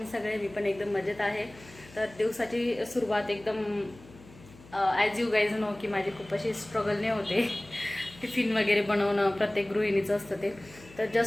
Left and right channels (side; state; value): left; noise; hum, 22 dB below the sound